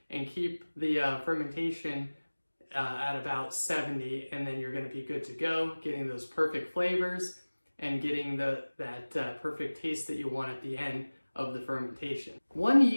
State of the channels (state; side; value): inverted; both; correlation -1.00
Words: and keep the fermentation at about 70, and then you're going to be good to go, getting those perfect flavors and getting that perfect taste that you want at the end of the fermentation. One